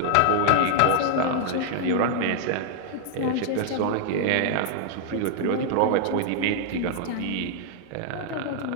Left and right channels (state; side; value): different; both; correlation 0.00